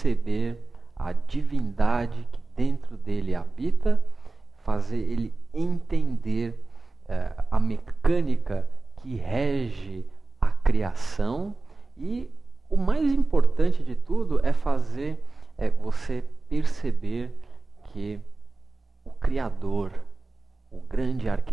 a divindade que dentro dele habita, fazer ele entender a mecânica que rege a criação, e o mais importante de tudo é fazer você perceber que o Criador, o grande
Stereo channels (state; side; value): quieter; left; 3.4 dB